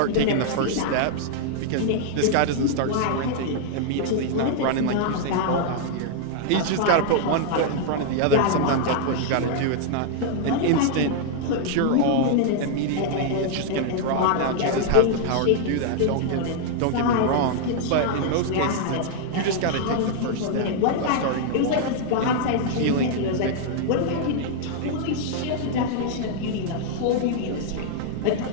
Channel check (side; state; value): both; different; correlation -0.01